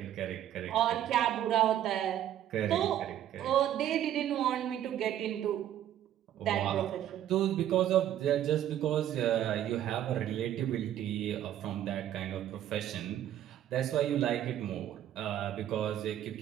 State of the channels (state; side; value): quieter; left; 11.4 dB